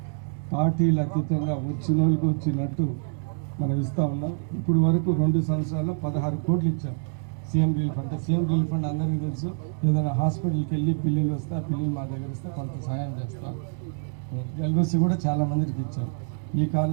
పార్టీలు అతీతంగా వచ్చిన వాళ్ళకి వచ్చినట్టు మనం ఇస్తూ ఉన్నాం. ఇప్పుడు వరకు 2 సంవత్సరాల్లో 16 కోట్లు ఇచ్చాం CM relief fund. CM relief fund అందరికీ తెలుసు, ఏదైనా హాస్పిటల్కి వెళ్ళి పిల్లలు వస్తే ఆ పిల్లలు మా దగ్గర ఇస్తే కొంత సహాయం చేస్తాం. ఎల్ఓసి కూడా చాలా మందికి ఇచ్చాం. ఈ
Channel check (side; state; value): left; silent; digital silence